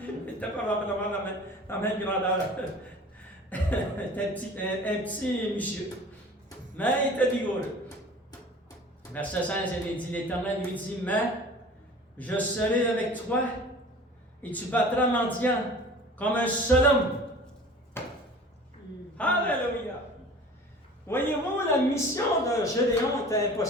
Il n'était pas vraiment la même grandeur. un petit monsieur. Mais il était vigoureux. Verset 16, il dit, l'Éternel lui dit, mais je serai avec toi et tu battras Madian comme un seul homme. Alléluia. Voyez-vous, la mission de Gédéon était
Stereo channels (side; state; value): both; normal; correlation 0.43